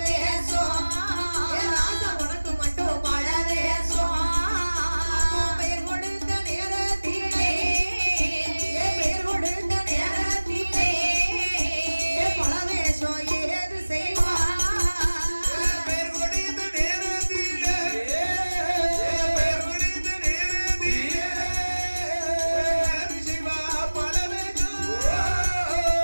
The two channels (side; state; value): both; inverted; correlation -1.00